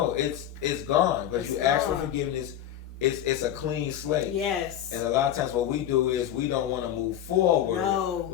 it's gone because you ask for forgiveness. It's a clean slate. Yes. And a lot of times what we do is we don't want to move forward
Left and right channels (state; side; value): quieter; right; 10.8 dB